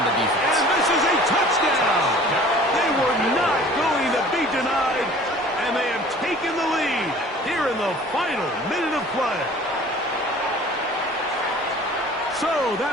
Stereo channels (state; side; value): normal; both; correlation 0.47